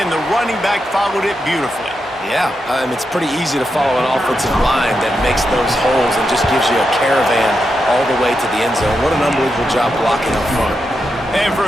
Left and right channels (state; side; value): normal; both; correlation 0.86